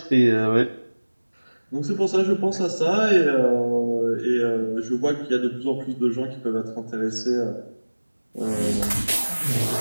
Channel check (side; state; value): both; inverted; correlation -1.00